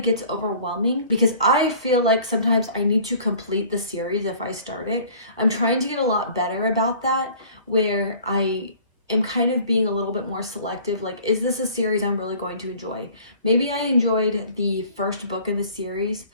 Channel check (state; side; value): inverted; both; correlation -0.50